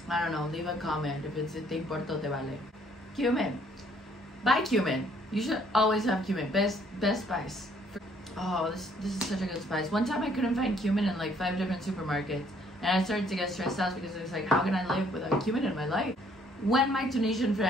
I don't know, leave a comment if it's te importa o te vale. Cumin. Buy cumin. You should always have cumin. Best spice. Oh, this is such a good spice. One time I couldn't find cumin in like 5 different supermarkets, and I started to get stressed out because it was like, how can I live without cumin in my life? When my Tunisian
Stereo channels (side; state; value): both; normal; correlation 0.64